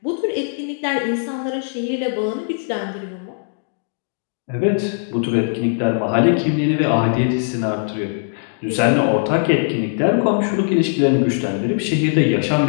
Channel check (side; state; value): right; silent; digital silence